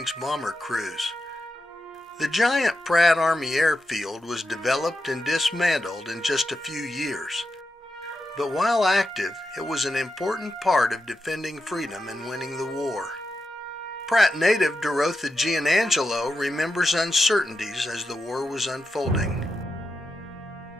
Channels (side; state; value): both; normal; correlation 0.88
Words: bomber crews. The giant Pratt Army Airfield was developed and dismantled in just a few years. But while active, it was an important part of defending freedom and winning the war. Pratt Native Dorotha Giannangelo remembers uncertainties as the war was unfolding.